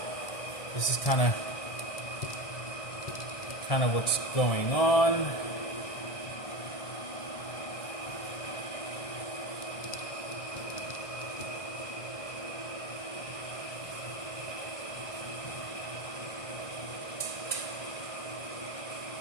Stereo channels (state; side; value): late; right; 1.6 ms